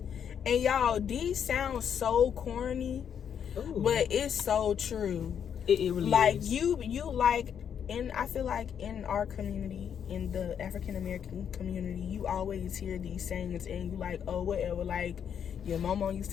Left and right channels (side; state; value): right; quieter; 8.2 dB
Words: y'all, these sound so corny, but it's so true. It really is. You like, and I feel like in our community, in the African American community, you always hear these sayings, and you like, oh, whatever, like your mama used